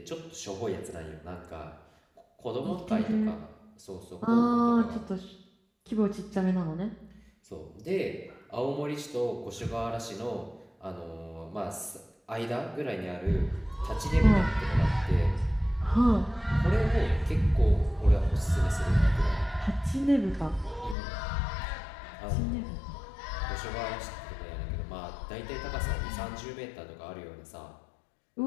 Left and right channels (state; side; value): drops out; right; at 21.0 s